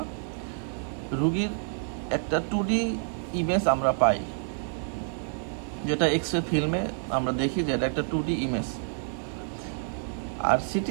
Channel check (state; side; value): silent; left; digital silence